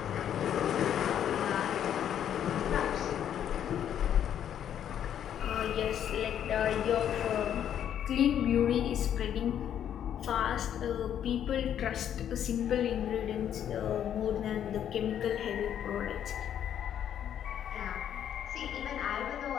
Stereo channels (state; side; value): quieter; right; 9.8 dB